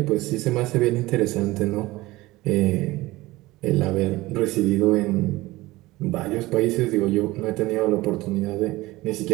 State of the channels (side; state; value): left; quieter; 19.3 dB